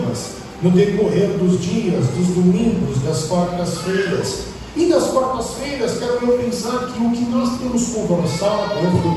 no decorrer dos dias, dos domingos, das quartas-feiras. E das quartas-feiras, quero eu pensar que o que nós temos conversado,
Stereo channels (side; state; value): both; identical; correlation 1.00